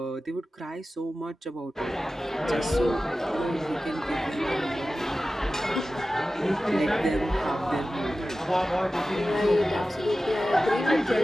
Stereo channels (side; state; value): both; normal; correlation 0.95